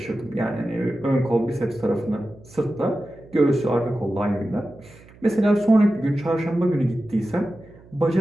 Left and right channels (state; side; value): noise; right; hum, 24 dB below the sound